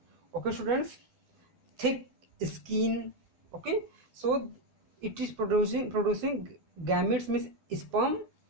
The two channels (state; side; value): late; left; 12 ms